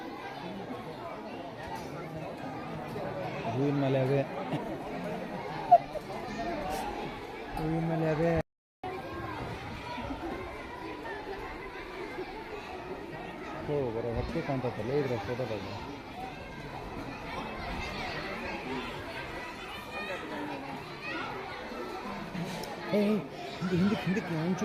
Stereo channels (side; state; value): both; identical; correlation 1.00